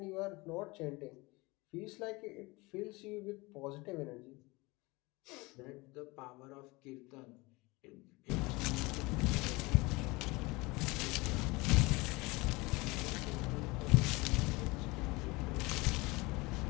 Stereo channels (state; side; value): quieter; right; 23.8 dB